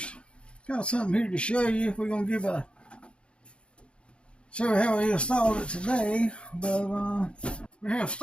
Got something here to show you. We're going to show you how we installed it today. But we have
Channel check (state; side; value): late; right; 0.057 ms